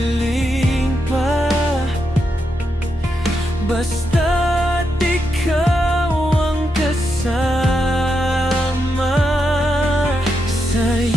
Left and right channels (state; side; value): normal; both; correlation 0.84